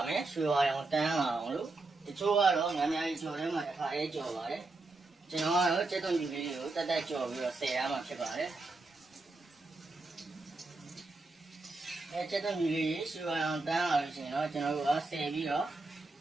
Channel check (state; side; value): quieter; left; 3.3 dB